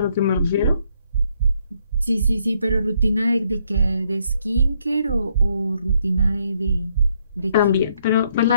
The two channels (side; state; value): both; inverted; correlation -0.72